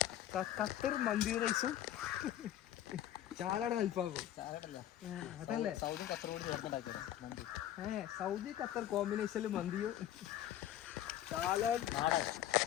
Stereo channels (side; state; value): right; quieter; 12.0 dB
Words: ഖത്തർ മന്തി റൈസും ചാലാടൻ അൽഫാമും. അതല്ലേ സൗദി ഖത്തർ കോമ്പിനേഷനിൽ മന്തിയും ചാലാടൻ